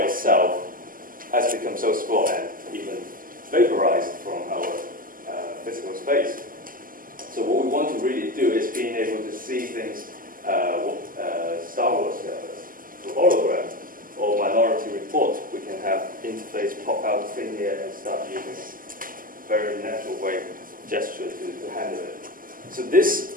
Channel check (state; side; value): late; left; 0.41 ms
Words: itself has become so small and even vaporized from our physical space. So what we want to really do is being able to see things, Star Wars through hologram or Minority Report. We can have interface pop out of thin air and start using very natural way gesture to handle it. So this